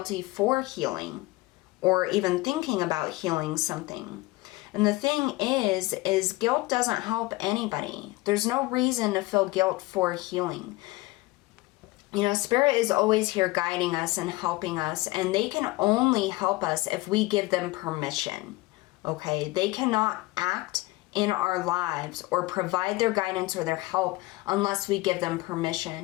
for healing or even thinking about healing something. And the thing is guilt doesn't help anybody. There's no reason to feel guilt for healing. You know, Spirit is always here guiding us and helping us, and they can only help us if we give them permission, okay? They cannot act in our lives or provide their guidance or their help unless we give them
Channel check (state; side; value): quieter; right; 20.7 dB